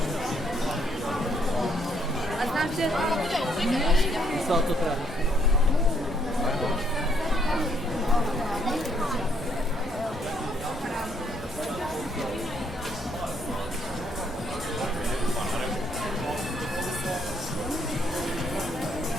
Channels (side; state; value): both; normal; correlation 0.69